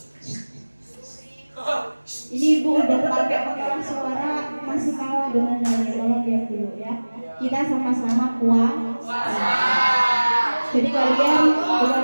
ini Ibu udah pakai pengeras suara masih kalah dengan nyanyi. Tolong lihat dulu ya. Kita sama-sama kuat. Jadi kalian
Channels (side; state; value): both; inverted; correlation -1.00